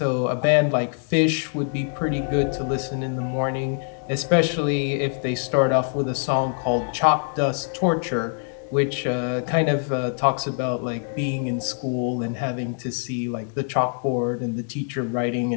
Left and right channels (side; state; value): right; silent; 58 dB below the other